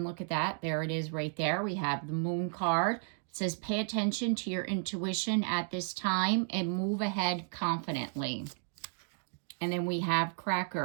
look at that. There it is right there. We have the Moon card. It says, pay attention to your intuition at this time and move ahead confidently. And then we have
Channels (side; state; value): left; silent; 56 dB below the other